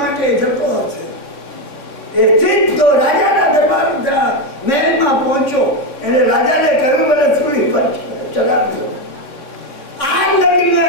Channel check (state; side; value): late; right; 3.5 ms